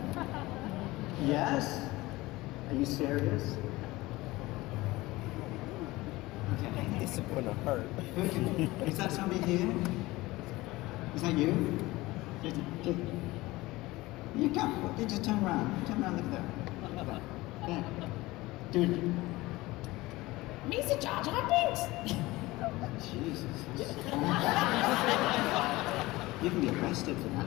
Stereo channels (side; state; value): right; quieter; 19.8 dB